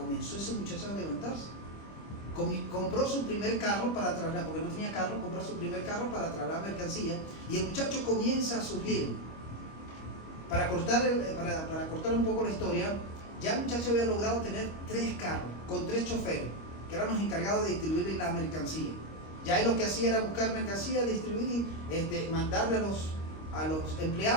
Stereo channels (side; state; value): right; late; 25 ms